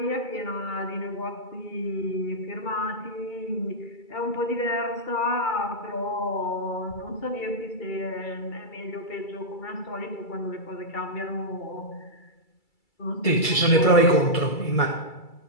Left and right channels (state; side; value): late; right; 2.3 ms